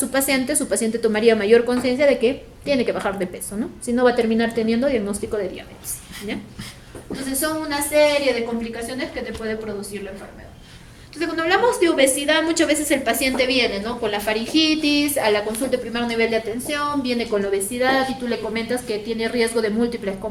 paciente tomaría mayor conciencia de que tiene que bajar de peso, ¿no? Si no, va a terminar teniendo diagnóstico de diabetes, ¿ya? Entonces, son una serie de complicaciones que te puede producir la enfermedad. Entonces, cuando hablamos de obesidad, muchas veces el paciente viene, ¿no? Con la faringitis, a la consulta de primer nivel de atención, viene con la obesidad y tú le comentas que tiene riesgo de múltiples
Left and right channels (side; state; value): both; identical; correlation 1.00